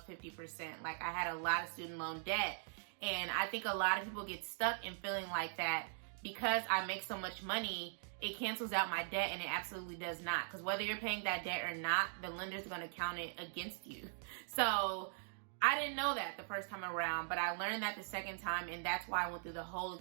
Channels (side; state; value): left; silent; digital silence